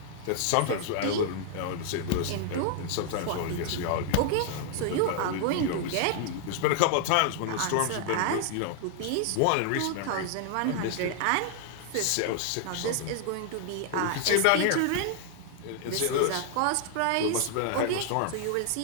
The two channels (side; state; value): both; different; correlation 0.00